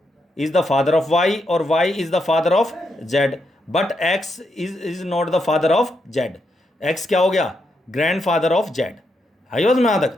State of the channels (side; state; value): both; normal; correlation 0.81